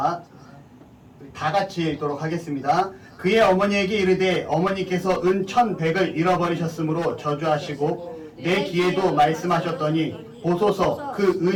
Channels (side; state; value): both; identical; correlation 1.00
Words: 다 같이 읽도록 하겠습니다. 그의 어머니에게 이르되 어머니께서 은 1,100을 잃어버리셨으므로 저주하시고 내 귀에도 말씀하셨더니 보소서 그